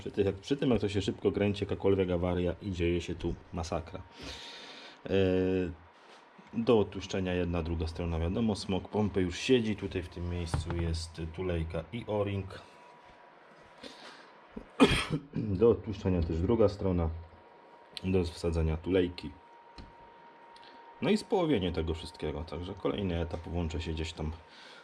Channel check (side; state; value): both; identical; correlation 1.00